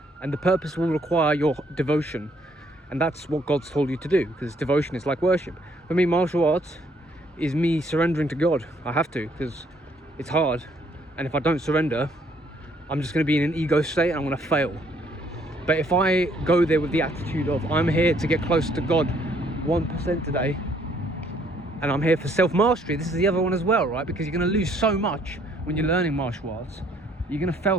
and the purpose will require your devotion, and that's what God's told you to do, because devotion is like worship. For me, martial arts is me surrendering to God. I have to, because it's hard, and if I don't surrender, I'm just going to be in an ego state and I'm going to fail. But if I go there with the attitude of, I'm here to get close to God 1% today, and I'm here for self-mastery, this is the other one as well, right? Because you're going to lose so much when you're learning martial arts. You're going to fail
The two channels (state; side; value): normal; both; correlation 0.66